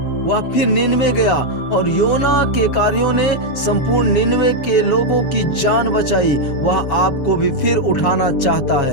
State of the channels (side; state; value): right; late; 7.1 ms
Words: नीनवे गया और योना के कार्यों ने संपूर्ण नीनवे के लोगों की जान बचाई। वह आपको भी फिर उठाना चाहता